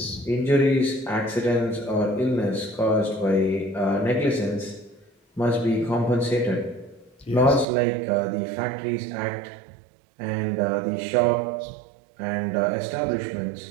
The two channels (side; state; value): left; drops out; at 7.7 s